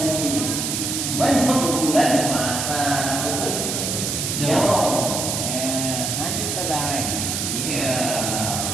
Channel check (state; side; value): noise; right; hiss, 1 dB below the sound